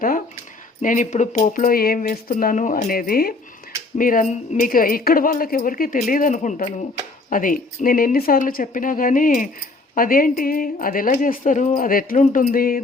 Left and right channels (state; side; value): quieter; right; 3.4 dB